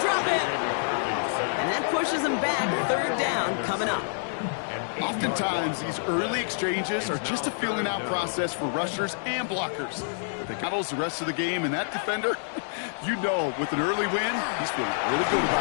drop it. And that pushes them back. 3rd down coming up. Oftentimes, these early exchanges are just a feeling out process for rushers and blockers. They battles the rest of the game, and that defender, you know, with an early win, he's feeling really good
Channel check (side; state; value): right; silent; digital silence